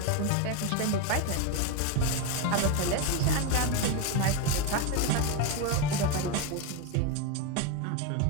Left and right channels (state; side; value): different; both; correlation 0.03